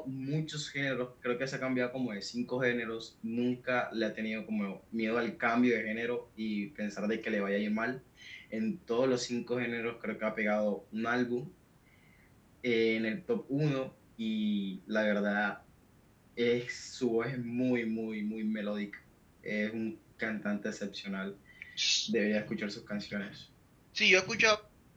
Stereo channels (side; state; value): both; identical; correlation 1.00